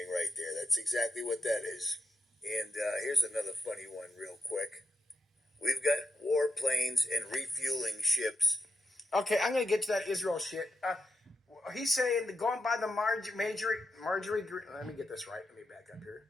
right there. That's exactly what that is. And here's another funny one real quick. We've got warplanes and refueling ships. Okay, I'm going to get to that Israel shit. He's saying, going by the Marjorie, let me get this right. Let me back up here.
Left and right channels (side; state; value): both; normal; correlation 0.83